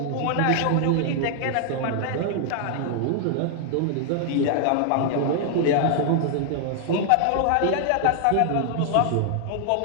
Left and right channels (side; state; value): both; different; correlation 0.00